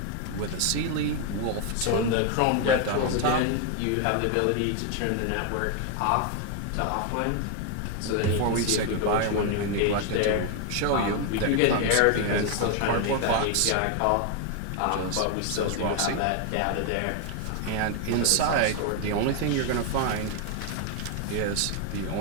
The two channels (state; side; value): different; both; correlation 0.01